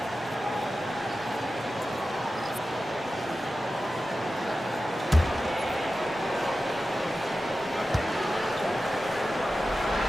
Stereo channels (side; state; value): both; normal; correlation 0.93